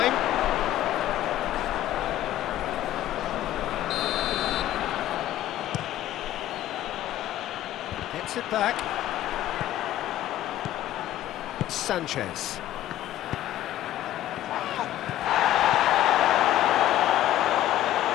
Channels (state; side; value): quieter; right; 13.4 dB